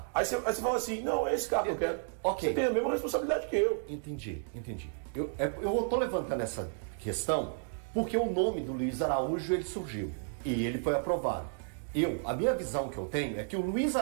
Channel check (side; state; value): left; silent; digital silence